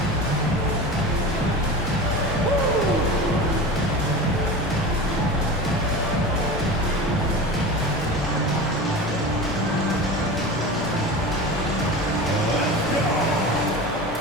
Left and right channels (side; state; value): both; normal; correlation 0.30